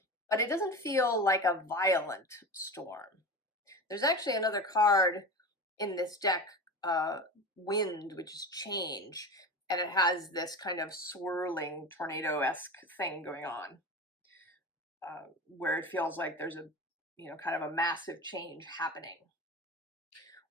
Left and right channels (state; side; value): normal; both; correlation 0.29